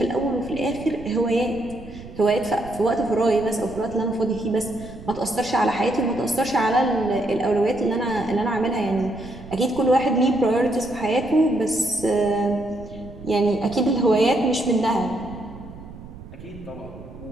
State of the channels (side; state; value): right; noise; rumble, 16 dB below the sound